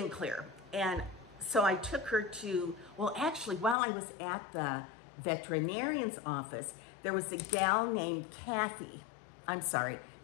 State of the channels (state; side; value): drops out; right; at 3.8 s